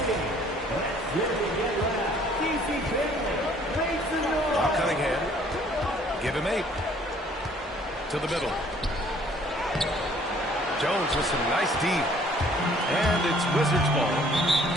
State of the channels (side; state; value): both; normal; correlation 0.58